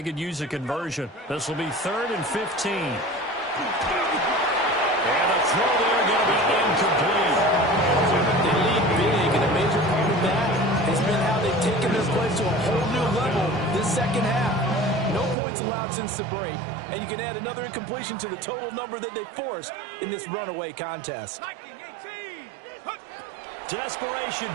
could use a conversion. This will be 3rd and 15. And a throw there going to be incomplete. They lead big, and a major part of that has been how they've taken their play to a whole new level this second half. No points allowed since the break, and you can add another incompletion to the total number that they forced in this runaway contest. Desperation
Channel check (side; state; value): left; drops out; at 15.4 s